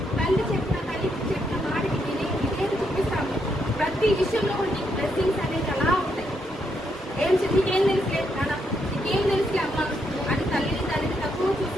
తల్లికి చెప్పిన మాటకి విధేయత చూపిస్తాము, ప్రతి విషయంలో కూడా నీకు బ్లెస్సింగ్స్ అనేది అలా ఉంటాయి. నీకేం తెలుసులే నాన్న, నీకేం తెలుసులే అమ్మ అని తల్లిని తక్కువ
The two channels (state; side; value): normal; both; correlation 0.78